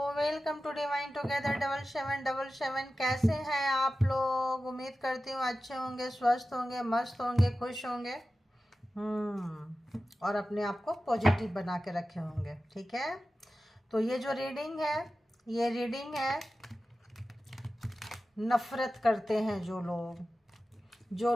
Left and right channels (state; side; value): normal; both; correlation 0.94